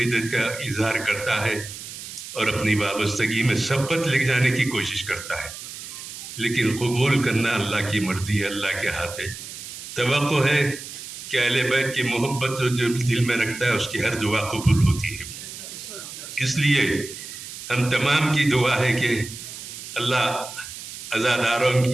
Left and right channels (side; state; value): right; noise; hiss, 11 dB below the sound